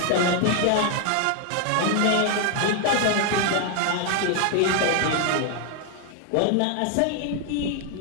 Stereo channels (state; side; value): different; both; correlation 0.00